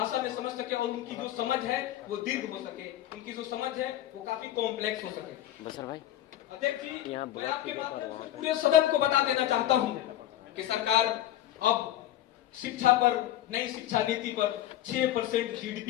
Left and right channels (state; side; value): quieter; right; 13.2 dB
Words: में समझ सके और उनकी जो समझ है वो दीर्घ हो सके, उनकी जो समझ है वो काफी कॉम्प्लेक्स हो सके। बसर भाई, अध्यक्ष जी, मैं आपके माध्यम से पूरे सदन को बता देना चाहता हूं कि सरकार अब शिक्षा पर, नई शिक्षा नीति पर 6%